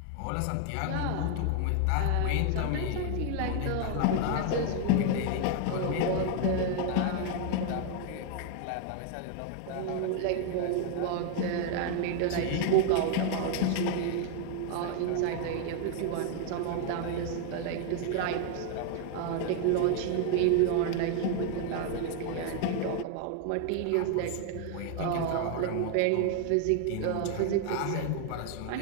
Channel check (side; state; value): both; different; correlation 0.00